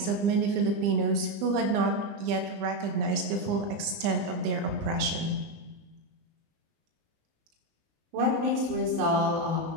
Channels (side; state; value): left; late; 20 ms